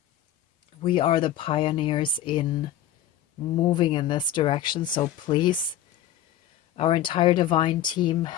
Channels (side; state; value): right; quieter; 11.2 dB